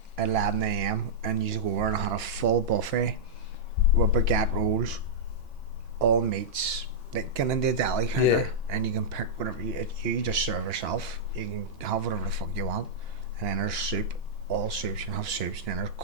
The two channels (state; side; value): normal; both; correlation -0.09